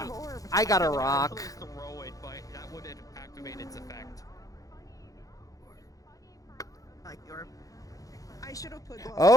I got a rock. Throw it, but that would activate its effect. I like the orb. I should have put gloves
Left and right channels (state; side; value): late; right; 0.17 ms